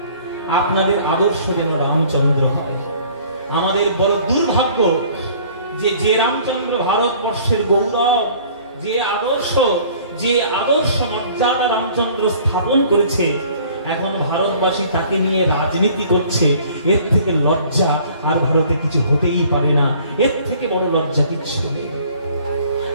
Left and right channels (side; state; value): both; inverted; correlation -0.53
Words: আপনাদের আদর্শ যেন রামচন্দ্র হয়। আমাদের বড় দুর্ভাগ্য যে রামচন্দ্র ভারতবর্ষের গৌরব, যে আদর্শ মর্যাদা রামচন্দ্র স্থাপন করেছে, এখন ভারতবাসী তাকে নিয়ে রাজনীতি করছে। এর থেকে লজ্জা আর ভারতে কিছু হতেই পারে না, এর থেকে বড় লজ্জা কিচ্ছু নেই।